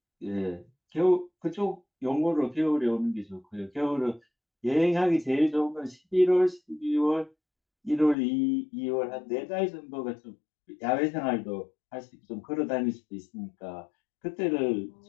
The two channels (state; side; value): drops out; right; at 8.2 s